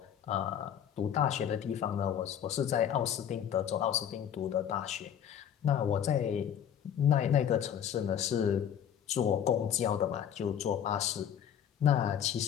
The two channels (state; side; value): quieter; right; 9.3 dB